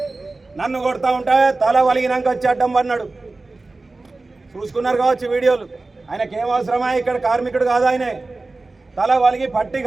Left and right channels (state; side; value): quieter; left; 3.4 dB